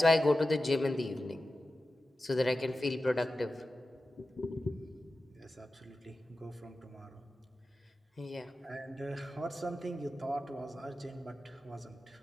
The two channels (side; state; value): both; normal; correlation 0.93